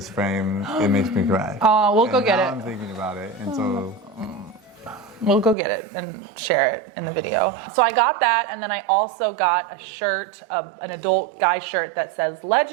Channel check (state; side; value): drops out; left; at 5.6 s